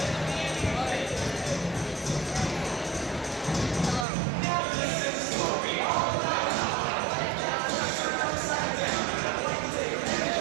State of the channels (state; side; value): drops out; left; at 4.0 s